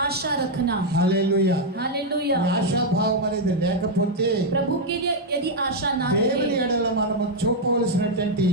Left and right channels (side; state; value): both; normal; correlation 0.00